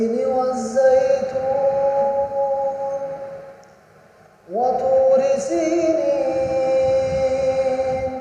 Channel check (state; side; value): identical; both; correlation 1.00